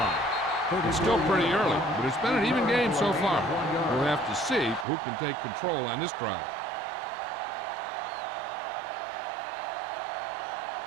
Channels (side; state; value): left; drops out; at 4.9 s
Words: It's still pretty early, but it's been an even game so far. We'll have to see who can take control on this drive.